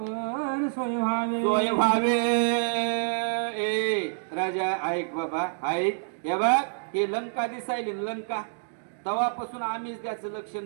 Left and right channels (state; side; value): silent; left; digital silence